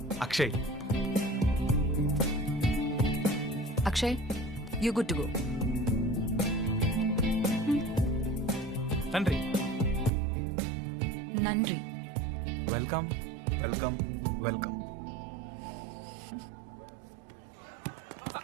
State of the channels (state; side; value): drops out; left; at 10.1 s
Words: Akshay. Akshay, you good to go. తండ్రి. నండ్రి. Welcome welcome welcome.